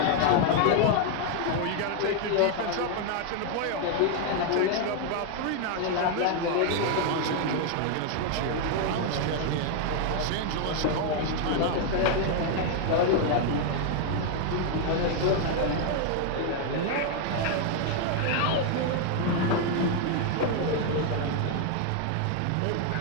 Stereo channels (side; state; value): both; different; correlation 0.00